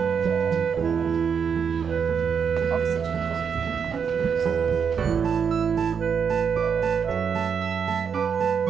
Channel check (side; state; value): left; quieter; 6.7 dB